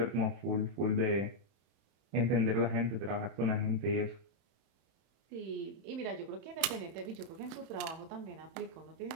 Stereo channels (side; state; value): left; late; 31 ms